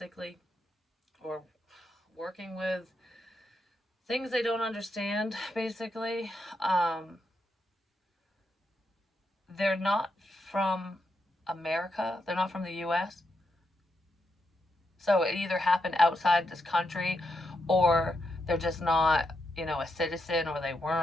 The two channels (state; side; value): normal; both; correlation 0.83